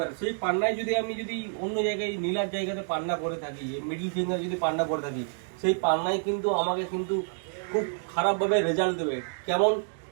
সেই পান্নায় যদি আমি যদি অন্য জায়গায় নীলার জায়গাতে পান্না পরে থাকি, মিডিল ফিঙ্গার যদি পান্না পরে থাকি, সেই পান্নায় কিন্তু আমাকে কিন্তু খুব খারাপভাবে রেজাল্ট দেবে। কেমন?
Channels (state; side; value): silent; left; digital silence